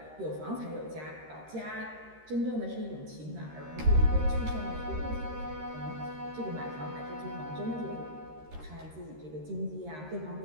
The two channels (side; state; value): left; late; 13 ms